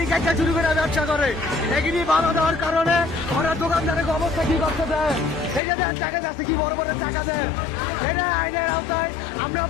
কাটা চুরি করে ব্যবসা করে। এগুলি বাধা দেওয়ার কারণে ওরা দোকানদারের অবস্থা কি করতে দেয়। এই যে দেন টাকা যাচ্ছে, কি বড় বড় টাকা দেয়। এটা আইনের আওতায় আমরা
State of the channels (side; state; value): right; drops out; at 5.6 s